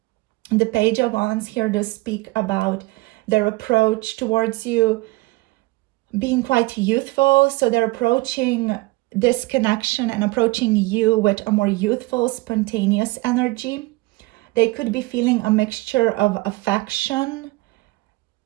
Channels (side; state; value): left; quieter; 22.2 dB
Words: The Page of Wands here does speak about their approach towards you being quite youthful. So they're approaching this connection and approaching you with a more youthful, spontaneous energy. They could be feeling a mixture of affection